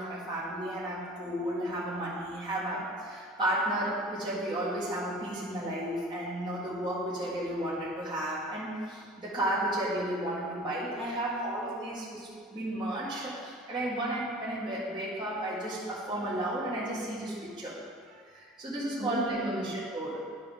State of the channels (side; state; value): both; normal; correlation 0.43